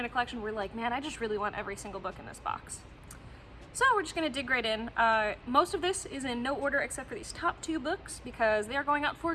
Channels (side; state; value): both; identical; correlation 1.00